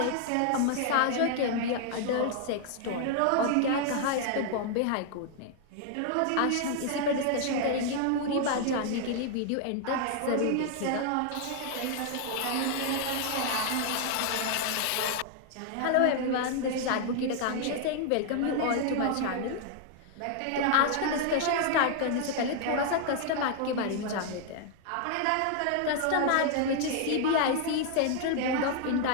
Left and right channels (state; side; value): different; both; correlation 0.00